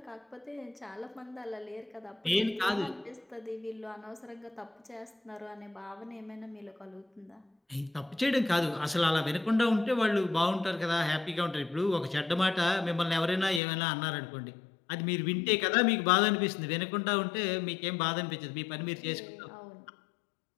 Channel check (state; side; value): drops out; right; at 13.6 s